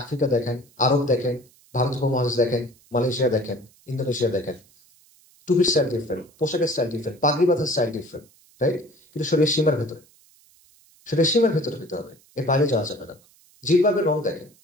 দেখেন, আরব দেখেন, ভারত উপমহাদেশ দেখেন, মালয়েশিয়া দেখেন, ইন্দোনেশিয়া দেখেন, টুপির স্টাইল ডিফারেন্ট, পোশাকের স্টাইল ডিফারেন্ট, পাগড়ি বাঁধার স্টাইল ডিফারেন্ট, রাইট? কিন্তু শরীরের সীমার ভেতরে, শরীরের সীমার ভেতরে হতে হবে, এর বাইরে যাওয়া যাবে না। জিলবাবের রং দেখেন,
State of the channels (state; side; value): noise; right; hiss, 30 dB below the sound